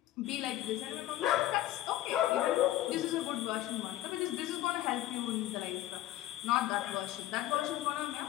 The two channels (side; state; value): right; quieter; 14.4 dB